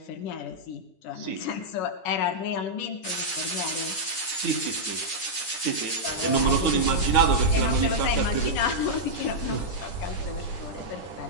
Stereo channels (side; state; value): right; late; 9.6 ms